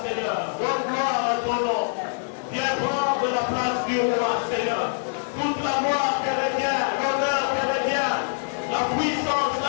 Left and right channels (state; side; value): silent; right; digital silence